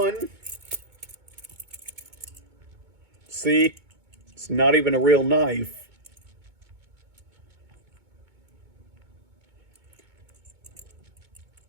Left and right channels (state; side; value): late; left; 2.2 ms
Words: See? It's not even a real knife.